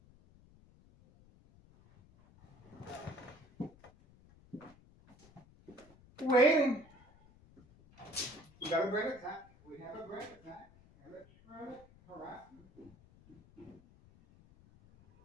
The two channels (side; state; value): left; noise; rumble, 25 dB below the sound